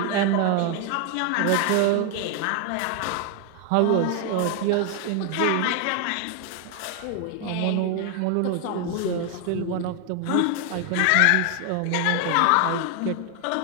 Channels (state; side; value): different; both; correlation 0.01